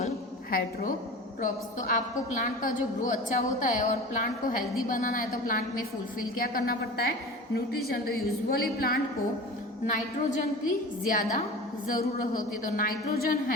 heterotrophs? तो आपको प्लांट का जो ग्रो अच्छा होता है और प्लांट को हेल्दी बनाना है तो प्लांट में फुलफिल क्या करना पड़ता है, न्यूट्रिशन. तो यूजुअली प्लांट को नाइट्रोजन की ज़्यादा ज़रूरत होती है. तो नाइट्रोजन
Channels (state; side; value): normal; both; correlation 0.35